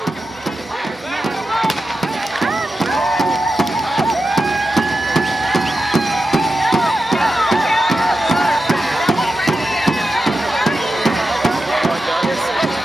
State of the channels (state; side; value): normal; both; correlation 0.91